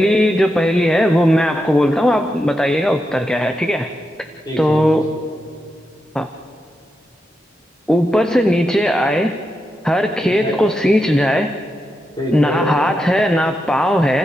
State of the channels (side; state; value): both; normal; correlation 0.86